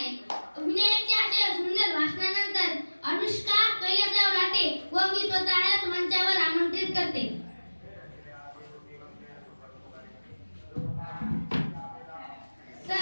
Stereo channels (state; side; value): inverted; both; correlation -1.00